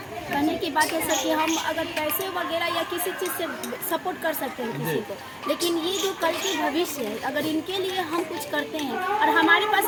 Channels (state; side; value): identical; both; correlation 1.00